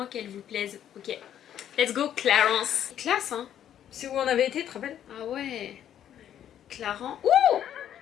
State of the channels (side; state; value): right; quieter; 10.3 dB